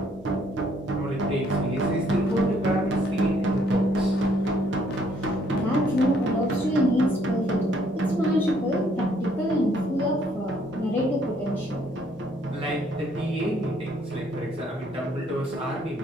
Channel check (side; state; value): both; normal; correlation 0.66